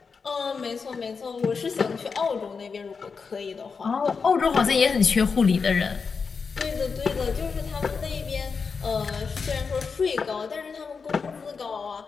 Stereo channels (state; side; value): quieter; right; 5.3 dB